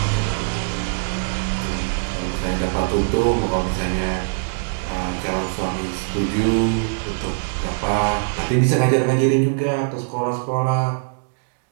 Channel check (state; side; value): silent; left; digital silence